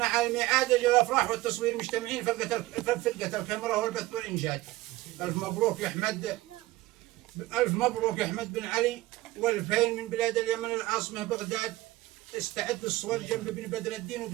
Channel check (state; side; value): quieter; left; 18.4 dB